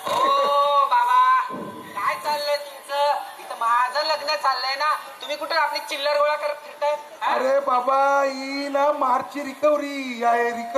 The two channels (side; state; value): both; identical; correlation 1.00